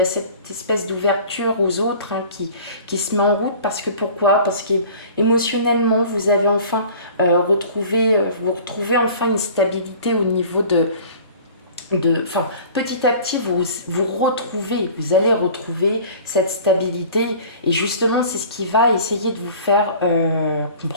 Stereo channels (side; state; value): both; inverted; correlation -0.44